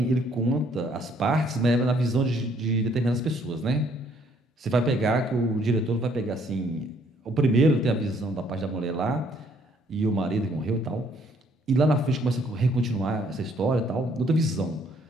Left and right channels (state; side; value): normal; both; correlation 0.65